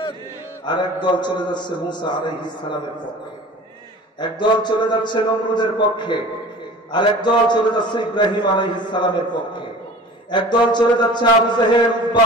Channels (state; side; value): normal; both; correlation 0.41